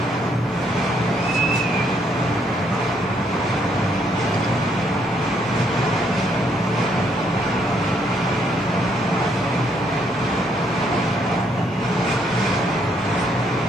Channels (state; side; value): normal; both; correlation 0.71